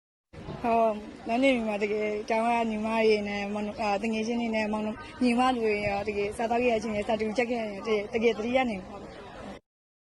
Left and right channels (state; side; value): identical; both; correlation 1.00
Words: နောက်နေမှာတကယ်ကျောင်းကညီမတွေနဲ့တငယ်ချင်းတွေနဲ့မောင်ညီမတွေရောတကယ်စားတော့ရချင်းနဲ့စတူချက်ခဲ့ရတယ်တကယ်သတိရနေပါဘူး